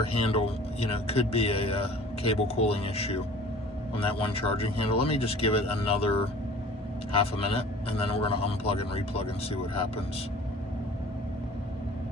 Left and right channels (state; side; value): normal; both; correlation 0.46